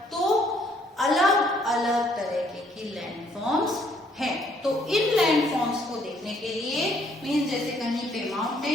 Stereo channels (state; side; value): normal; both; correlation 0.66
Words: तो अलग अलग तरह की लैंडफॉर्म्स हैं। तो इन लैंडफॉर्म्स को देखने के लिए मीन्स जैसे कहीं पे